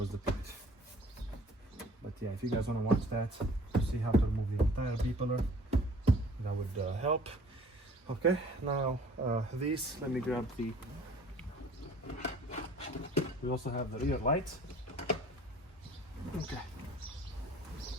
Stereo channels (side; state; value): both; normal; correlation 0.52